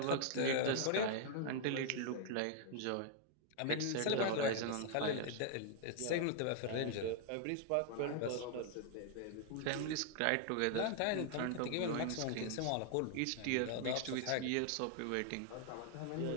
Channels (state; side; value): different; both; correlation 0.00